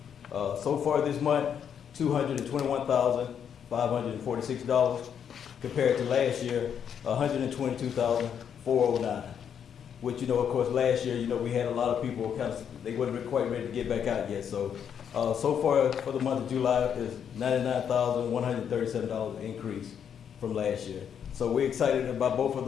So far this month, $221,546 compared to last year, $122,409. Which, of course, last year, we had a lot of people they wasn't quite ready to get back out yet. So far for the month of July is $99,137 increase from last year. So we're excited about both of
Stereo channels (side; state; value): right; quieter; 8.1 dB